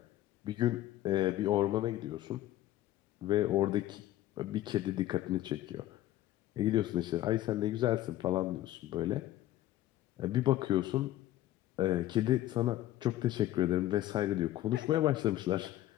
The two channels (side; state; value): right; quieter; 14.4 dB